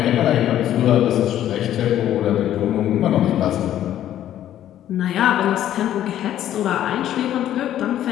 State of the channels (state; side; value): quieter; right; 11.8 dB